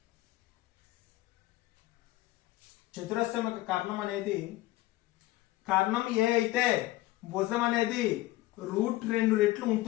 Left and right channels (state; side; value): quieter; right; 17.7 dB